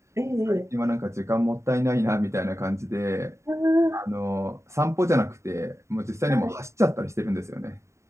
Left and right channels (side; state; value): left; late; 0.14 ms